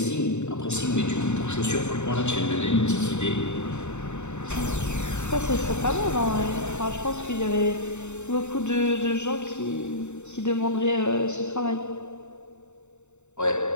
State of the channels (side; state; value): right; late; 0.83 ms